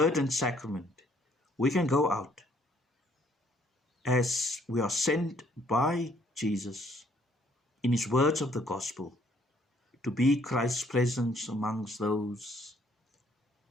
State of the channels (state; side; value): normal; both; correlation 0.65